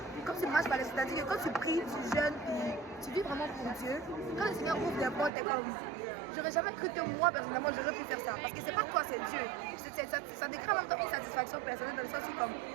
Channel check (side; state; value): left; drops out; at 5.3 s